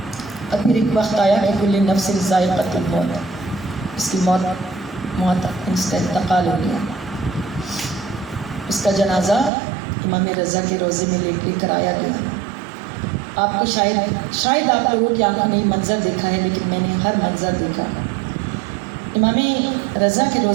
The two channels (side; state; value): left; drops out; at 9.5 s